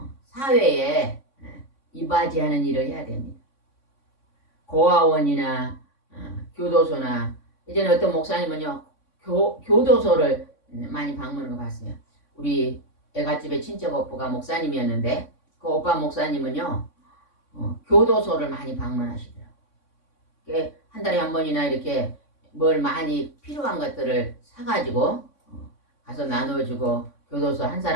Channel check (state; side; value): late; right; 3.6 ms